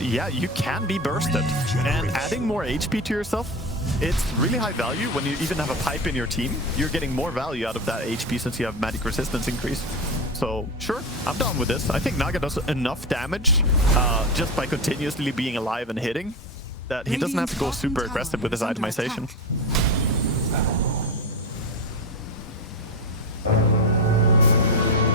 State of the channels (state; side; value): normal; both; correlation 0.20